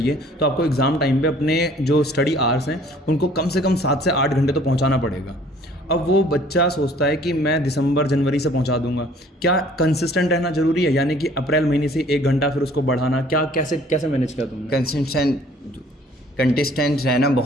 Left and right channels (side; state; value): both; normal; correlation 0.55